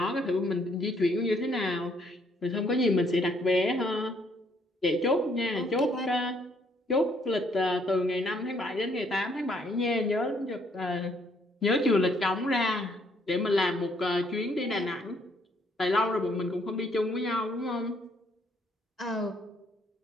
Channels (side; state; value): both; normal; correlation 0.68